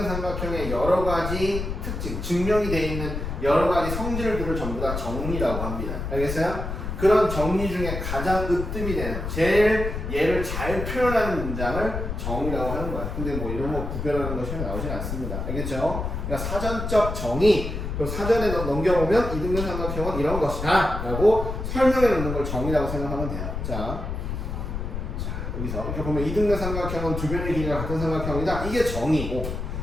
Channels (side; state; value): left; noise; rumble, 5 dB below the sound